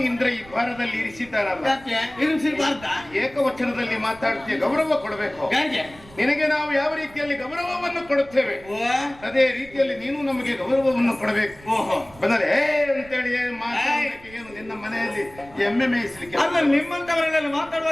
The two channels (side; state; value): right; noise; rumble, 22 dB below the sound